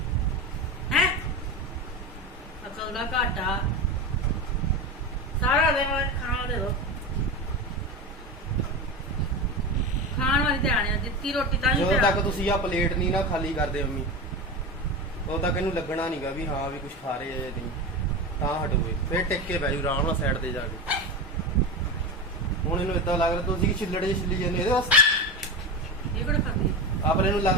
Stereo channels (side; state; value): both; normal; correlation 0.22